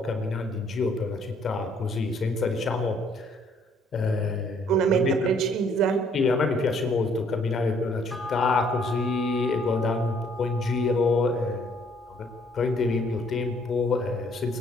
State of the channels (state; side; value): normal; both; correlation 0.63